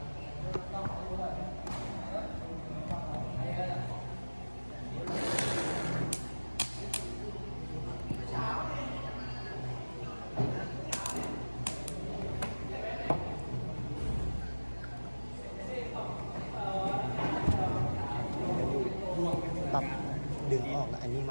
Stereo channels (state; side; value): inverted; both; correlation -1.00